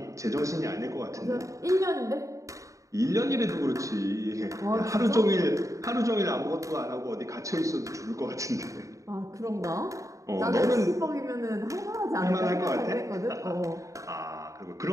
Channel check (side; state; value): left; late; 0.16 ms